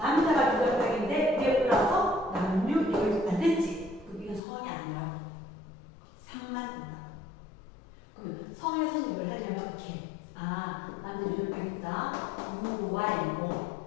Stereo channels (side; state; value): right; drops out; at 4.4 s